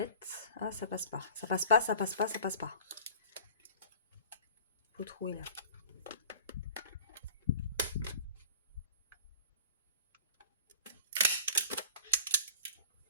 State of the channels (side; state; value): both; inverted; correlation -0.45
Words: Ah, ça passe pas. Ça passe pas, ça passe pas, ça passe pas. Faut trouver là.